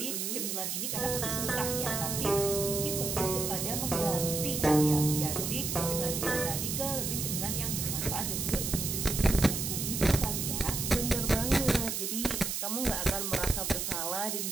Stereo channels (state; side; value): noise; right; hiss, 2 dB below the sound